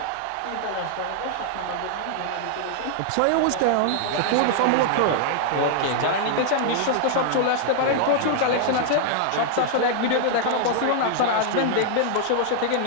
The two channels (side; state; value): both; different; correlation 0.00